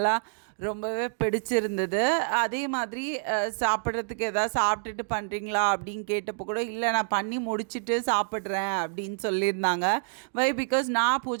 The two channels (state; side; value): silent; left; digital silence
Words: ரொம்பவே பிடிச்சிருந்தது. அதே மாதிரி சாப்பிட்றதுக்கு எதாவது சாப்பிட்டுட்டு பண்ணுறீங்களா அப்படின்னு கேட்டப்போ கூட இல்லை நான் பண்ணி முடிச்சுட்டு சாப்பிட்றேன் அப்படின்னு சொல்லியிருந்தாங்க. பிகாஸ் நான்